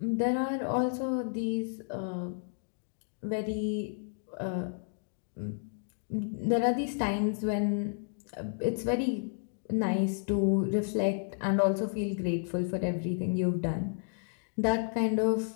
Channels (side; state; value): right; silent; digital silence